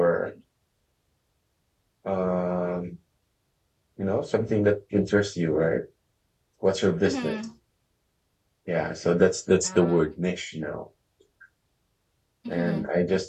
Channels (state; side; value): identical; both; correlation 1.00